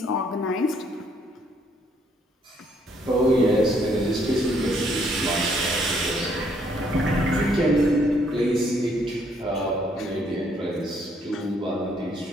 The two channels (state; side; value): normal; both; correlation 0.68